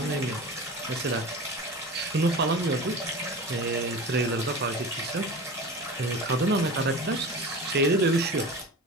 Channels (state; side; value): normal; both; correlation 0.32